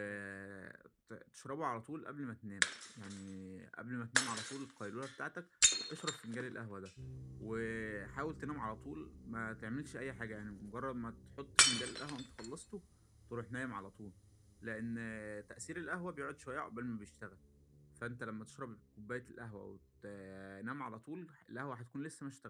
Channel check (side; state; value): both; identical; correlation 1.00